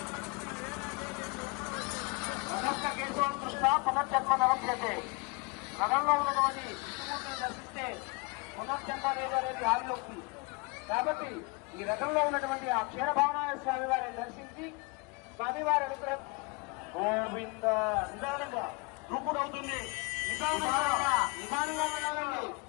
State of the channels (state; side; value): quieter; right; 28.7 dB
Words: అగస్త కేశవం కృష్ణ పునర్జన్మ నమస్కృతే. రథంలో ఉన్నటువంటి విష్ణుమూర్తిని దర్శిస్తే పునర్జన్మ లేదనేది ఆలోకి. కాబట్టి ఈ రథంలో ఉన్నటువంటి ఆ క్షీరభావనాయ స్వామి వారిని దర్శించి స్వామివారి అనుగ్రహం. గోవింద నిదానంగా దూకుడు అవుతుంది, నిదానంగా వెళ్ళాలండి.